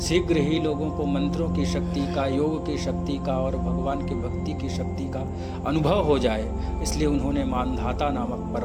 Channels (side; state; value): both; identical; correlation 1.00